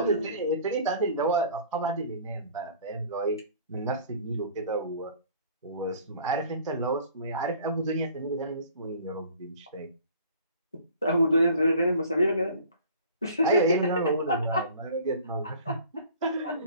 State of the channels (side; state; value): both; inverted; correlation -0.49